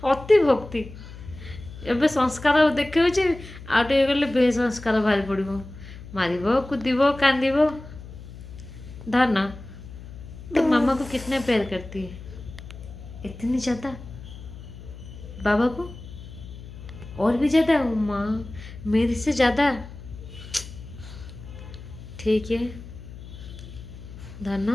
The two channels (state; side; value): noise; left; hum, 14 dB below the sound